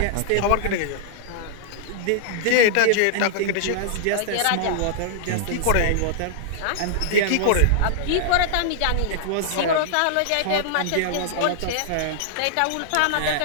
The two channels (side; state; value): both; different; correlation -0.01